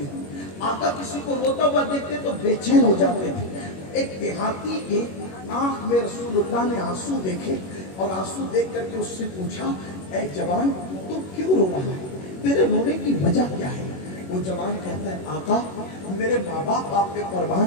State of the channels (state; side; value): late; right; 21 ms